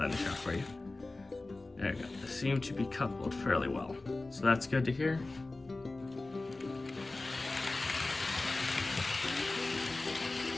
in the shot for you. There you go. They seem to be coupled fairly well. So that's good to hear.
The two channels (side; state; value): right; quieter; 3.2 dB